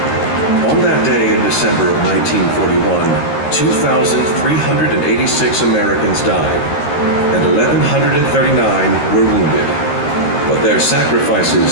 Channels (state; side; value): late; right; 13 ms